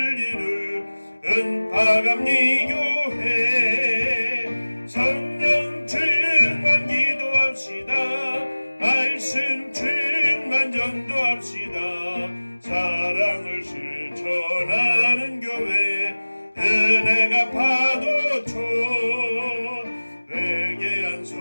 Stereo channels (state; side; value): inverted; both; correlation -1.00